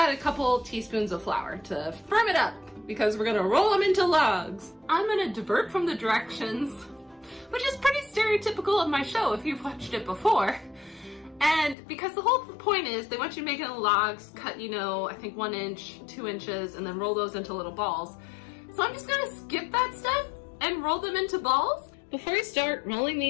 a couple teaspoons of flour to firm it up, because we're gonna roll them into logs. I'm gonna divert from the directions, which is pretty stereotypical of my show if you've watched it before. And because the whole point is they want you to make it in logs, cut, I think 1 inch, 2 inches, and then roll those into little balls. So I'm just gonna skip that step and roll them into balls. Before you start rolling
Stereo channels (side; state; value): right; drops out; at 11.8 s